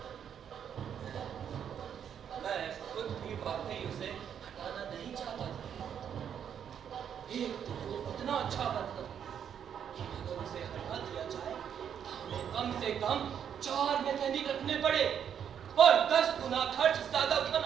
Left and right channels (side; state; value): left; quieter; 8.5 dB